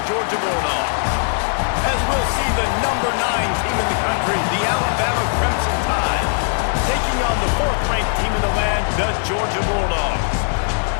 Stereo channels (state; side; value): silent; right; 66 dB below the other